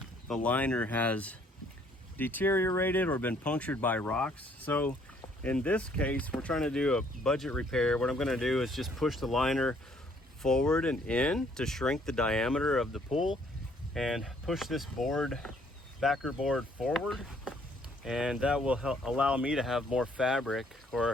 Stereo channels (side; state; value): both; normal; correlation 0.64